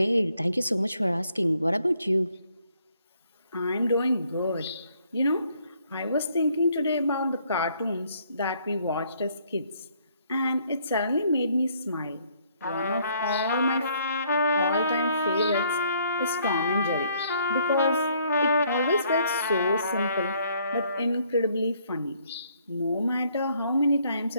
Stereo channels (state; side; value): inverted; both; correlation -0.67